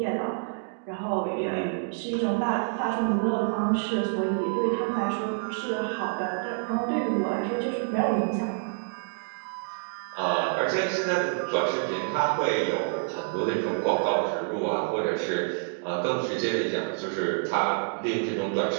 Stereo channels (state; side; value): silent; left; digital silence